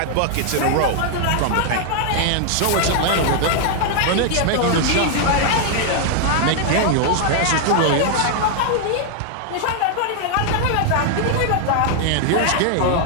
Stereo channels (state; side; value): different; both; correlation 0.00